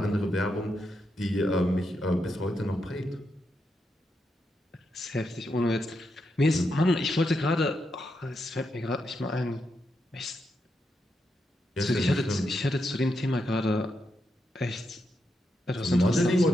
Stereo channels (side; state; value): both; normal; correlation 0.83